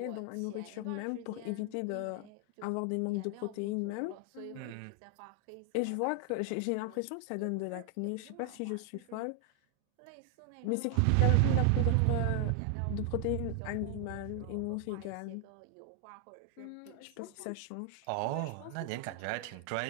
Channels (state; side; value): different; both; correlation 0.00